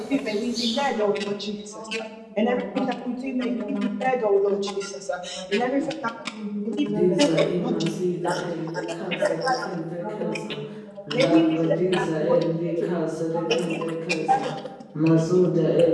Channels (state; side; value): identical; both; correlation 1.00